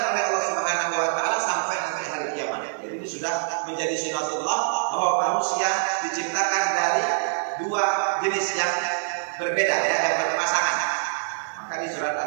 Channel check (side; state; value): left; silent; digital silence